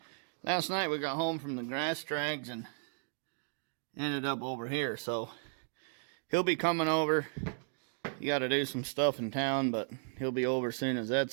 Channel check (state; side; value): silent; left; 54 dB below the other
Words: Last night we got home from the grass drags and ended up over here. So he'll be coming over. You got to do some stuff in town, but he'll be over as soon as